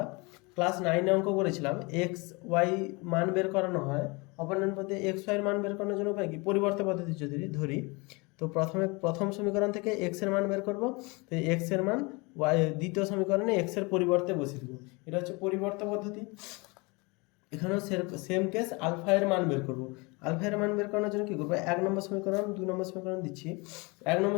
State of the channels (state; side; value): quieter; right; 27.4 dB